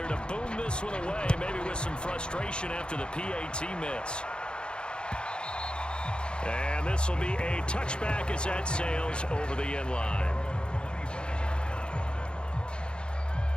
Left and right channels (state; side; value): late; right; 0.052 ms